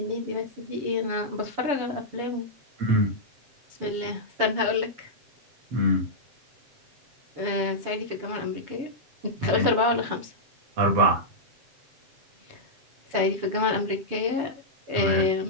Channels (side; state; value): left; late; 7.0 ms